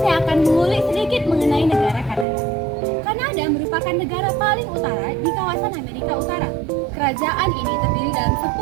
akan mengulik sedikit mengenai negara Kanada. Kanada merupakan negara paling utara di kawasan Amerika Utara. Kerajaan ini terdiri dalam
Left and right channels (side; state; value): left; drops out; at 2.2 s